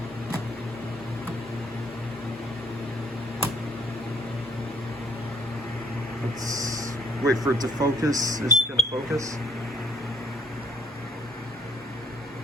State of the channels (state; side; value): normal; both; correlation 0.64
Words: Let's wait for it to focus. Is it gonna focus?